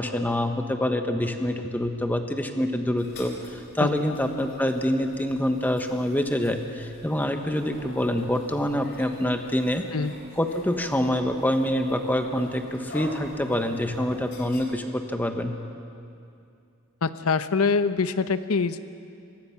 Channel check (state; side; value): normal; both; correlation 0.68